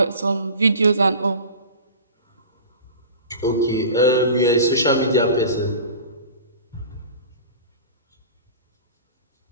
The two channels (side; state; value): both; inverted; correlation -0.37